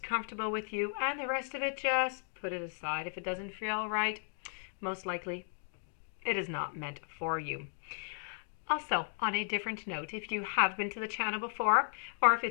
comfortable with you, and the rest of it just put it aside. If it doesn't feel right, most likely it is not meant for you. Also, on a different note, if you have been to the channel before, or if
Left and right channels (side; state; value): right; silent; digital silence